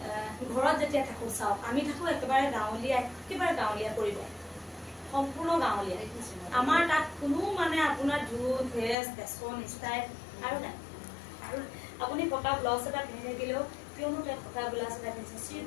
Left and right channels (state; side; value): drops out; right; at 9.0 s